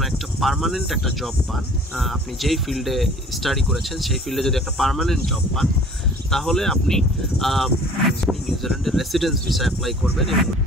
একটা পার্মানেন্ট একটা জব পান, আপনি যেই ফিল্ডে স্টাডি করেছেন সেই ফিল্ডে যদি একটা পার্মানেন্ট জব পান, তাহলে আপনি নিউজিল্যান্ডের রেসিডেন্স ভিসা অ্যাপ্লাই করবেন।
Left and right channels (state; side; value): normal; both; correlation 0.50